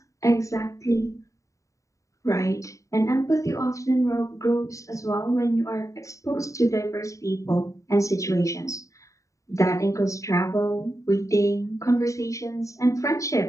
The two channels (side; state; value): right; late; 0.16 ms